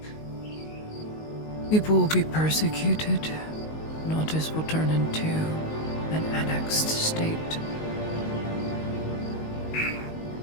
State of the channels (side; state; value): right; late; 19 ms